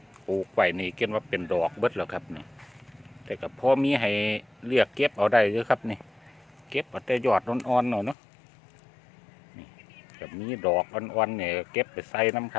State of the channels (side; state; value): right; drops out; at 8.2 s